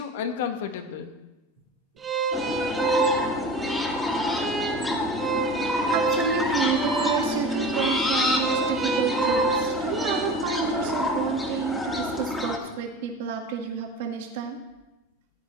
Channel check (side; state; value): both; normal; correlation 0.35